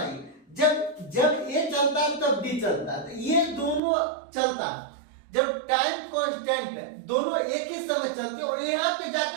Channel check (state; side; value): drops out; left; at 3.8 s